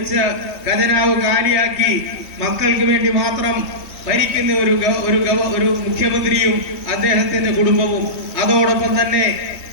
ഖജനാവ് കാലിയാക്കി മക്കൾക്ക് വേണ്ടി മാത്രം ഭരിക്കുന്ന ഒരു മുഖ്യമന്ത്രിയും അദ്ദേഹത്തിന്റെ കുടുംബവും, അതോടൊപ്പം തന്നെ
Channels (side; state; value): right; late; 3.6 ms